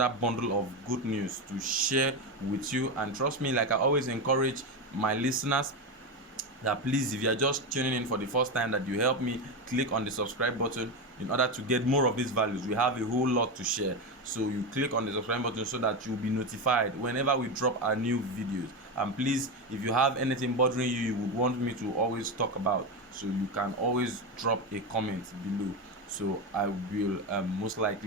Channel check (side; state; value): both; normal; correlation 0.14